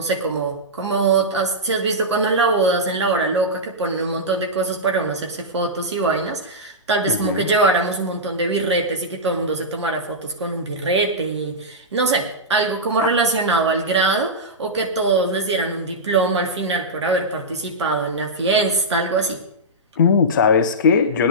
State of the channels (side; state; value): both; normal; correlation -0.12